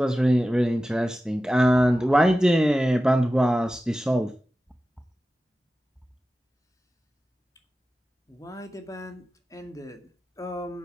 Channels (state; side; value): normal; both; correlation 0.94